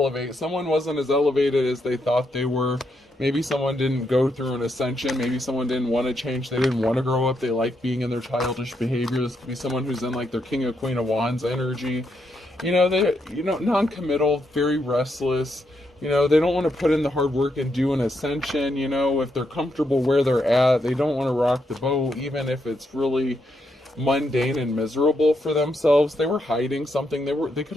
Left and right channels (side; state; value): both; normal; correlation 0.80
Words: Someone wasn't as elevated as they thought they were. Maybe someone didn't go through an ascension. Maybe someone didn't want to change. They didn't want to grow up. They like being in their childish behavior. This could be someone who's in like their King of Queen of Wands energy. They non-committal, very restless. They don't want to put in the hard work and do an ascension. If they're comfortable where they're at, they don't want to rock the boat, even if it's really mundane and miserable for themselves. They were hiding something. They could